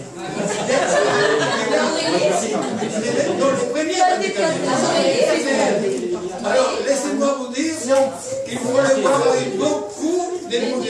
Dans le premier bal des cadets. Alors, laissez-moi vous dire qu'il faut les voir avec beaucoup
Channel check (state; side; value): identical; both; correlation 1.00